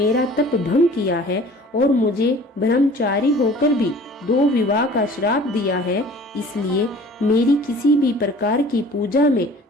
तप भंग किया है और मुझे ब्रह्मचारी होकर भी 2 विवाह का श्राप दिया है, इसलिए मेरी किसी भी प्रकार की पूजा में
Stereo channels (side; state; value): both; normal; correlation 0.47